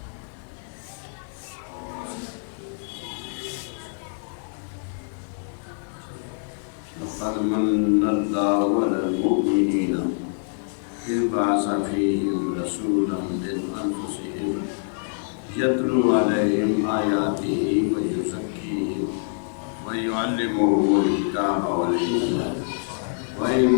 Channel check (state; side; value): silent; right; digital silence